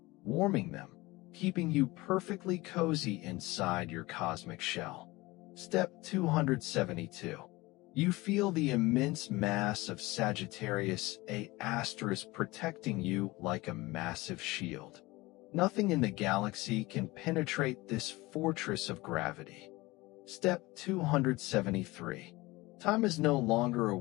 warming them, keeping you perfectly cozy inside your cosmic shell. Step 272. You feel the immense mass of Sagittarius A asterisk protecting you like a massive shield. Nothing in the galaxy can penetrate this fortress of gravity. Step 273. Time is no longer a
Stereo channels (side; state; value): right; quieter; 21.2 dB